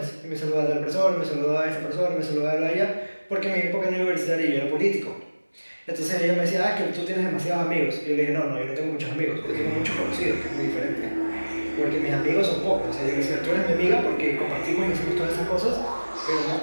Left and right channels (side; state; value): both; inverted; correlation -1.00